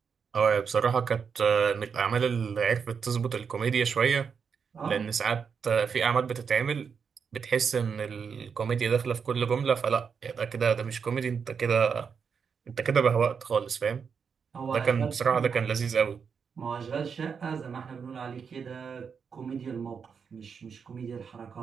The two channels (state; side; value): quieter; left; 6.3 dB